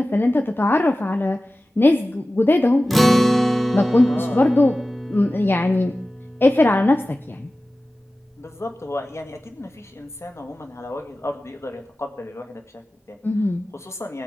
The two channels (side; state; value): both; normal; correlation 0.96